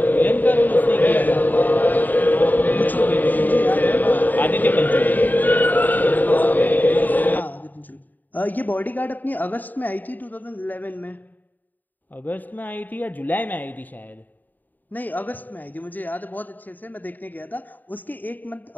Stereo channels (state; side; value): late; right; 0.087 ms